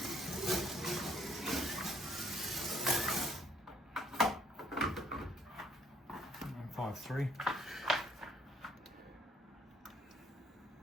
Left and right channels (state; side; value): normal; both; correlation 0.64